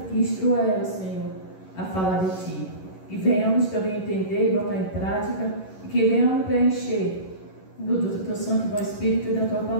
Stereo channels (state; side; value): late; right; 11 ms